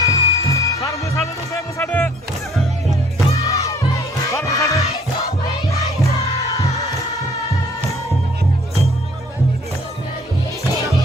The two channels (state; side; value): normal; both; correlation 0.58